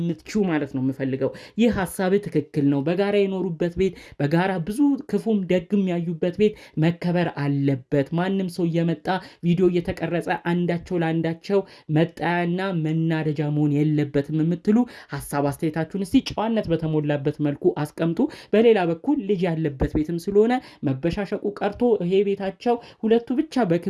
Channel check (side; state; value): both; identical; correlation 1.00